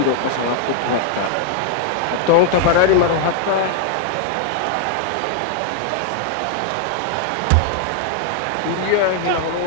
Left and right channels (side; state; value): both; different; correlation 0.00